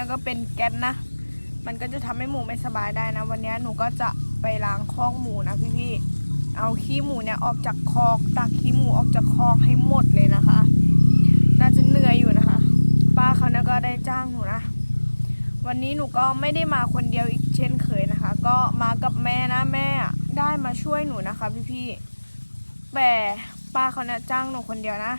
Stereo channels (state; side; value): inverted; both; correlation -1.00